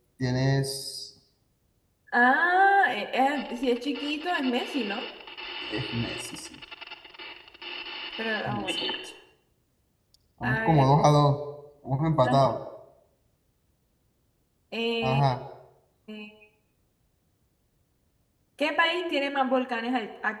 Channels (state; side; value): identical; both; correlation 1.00